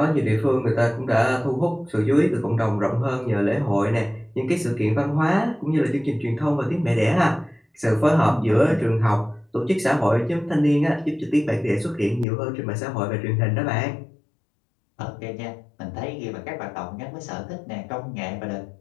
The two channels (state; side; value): drops out; right; at 12.2 s